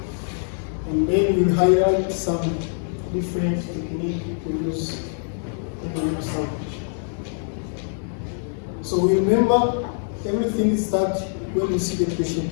And then we'll highlight some different techniques to use in the limb salvage. So remember, everything starts when you see the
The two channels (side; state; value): right; silent; 63 dB below the other